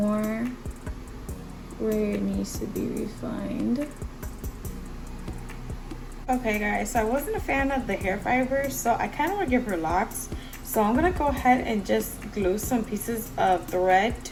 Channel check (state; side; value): identical; both; correlation 1.00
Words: where it needs to be refined. Okay guys, so I wasn't a fan of the hair fibers, so I kind of want to give her locks. So I'm going to go ahead and just glue some pieces of thread